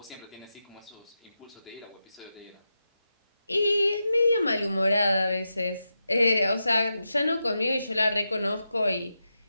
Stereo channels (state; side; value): inverted; both; correlation -0.89